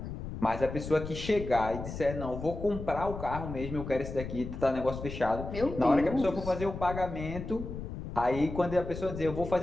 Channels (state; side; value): noise; left; rumble, 8 dB below the sound